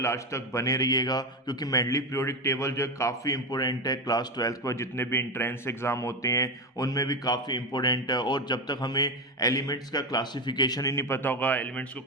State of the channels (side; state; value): both; normal; correlation 0.15